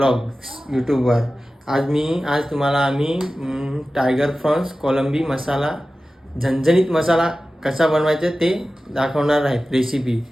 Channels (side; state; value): both; normal; correlation 0.95